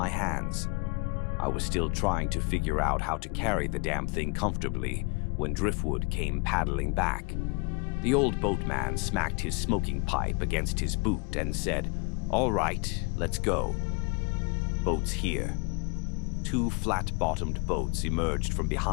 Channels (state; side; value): quieter; right; 29.0 dB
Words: hands. I was still trying to figure out how to carry the damn thing comfortably when Driftwood came paddling back. The old boatman smacked his smoking pipe against his boot and said, "All right, let's go." Boats here. Two flat-bottomed boats emerged from